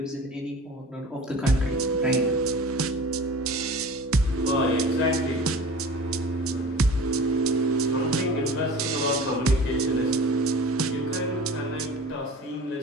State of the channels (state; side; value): normal; both; correlation 0.39